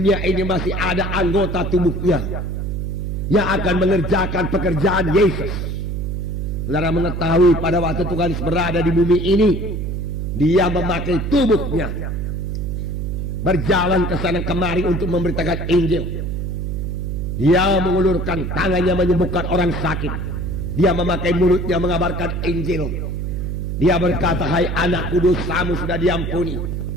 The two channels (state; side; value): noise; right; hum, 3 dB below the sound